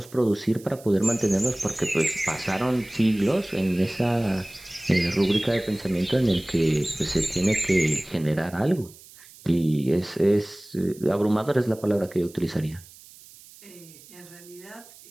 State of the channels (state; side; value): noise; right; hiss, 22 dB below the sound